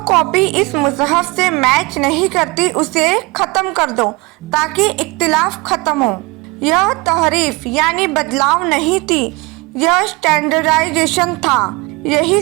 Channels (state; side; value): quieter; left; 24.9 dB